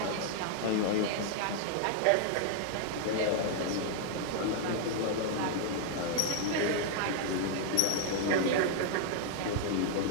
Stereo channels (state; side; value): different; both; correlation 0.00